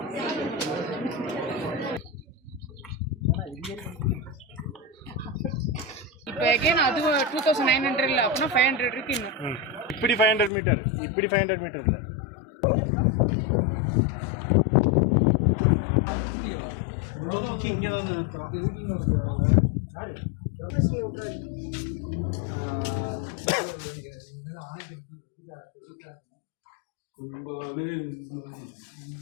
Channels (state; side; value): drops out; right; at 10.5 s